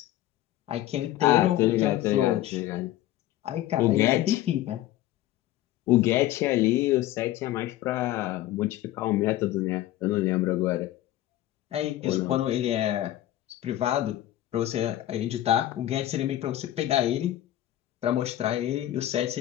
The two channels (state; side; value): quieter; right; 14.1 dB